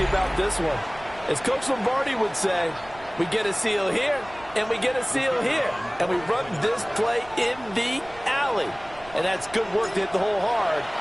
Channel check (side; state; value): right; noise; rumble, 21 dB below the sound